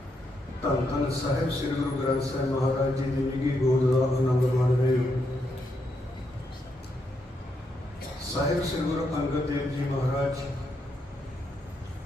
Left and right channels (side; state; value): both; normal; correlation 0.80